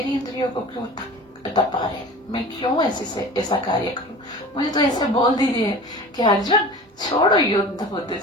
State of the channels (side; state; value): both; normal; correlation 0.38